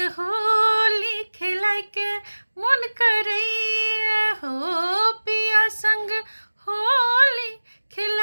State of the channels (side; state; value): both; inverted; correlation -1.00